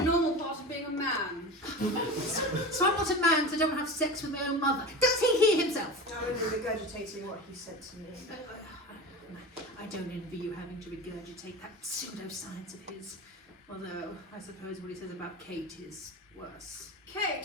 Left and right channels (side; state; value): both; normal; correlation 0.30